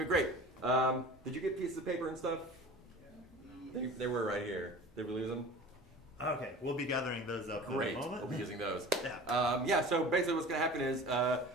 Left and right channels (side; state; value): both; normal; correlation 0.39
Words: be great. Did you get pieces of paper and stuff? They were right here. Did we lose them? Okay, we'll be gathering those up Great. in a moment. We'll be using those. Yeah. So basically what's going to happen is